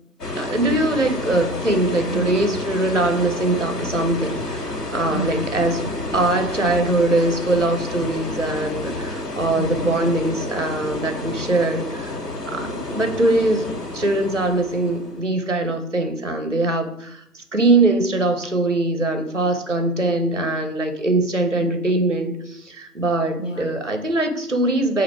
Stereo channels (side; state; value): both; normal; correlation 0.38